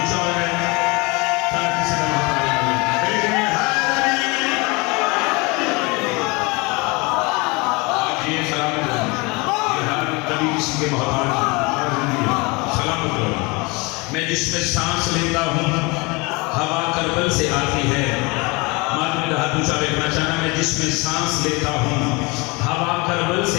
मैं जिसमें सांस लेता हूँ हवा करबल से आती है। मालूम हाथ ऊंचा देखना चाहना मैं जिसमें सांस लेता हूँ हवा करबल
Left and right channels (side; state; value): right; quieter; 26.8 dB